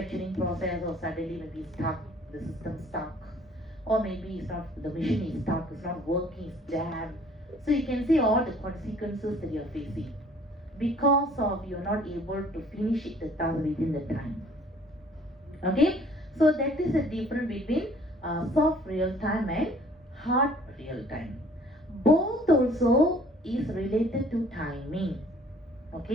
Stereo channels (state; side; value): normal; both; correlation 0.56